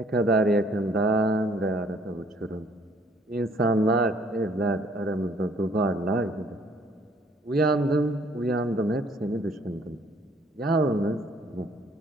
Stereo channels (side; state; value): both; normal; correlation 0.61